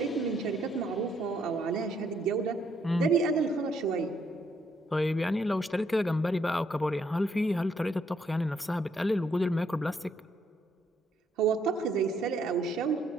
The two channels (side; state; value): both; normal; correlation 0.72